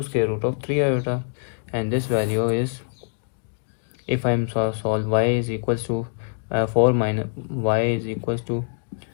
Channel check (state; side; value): silent; right; digital silence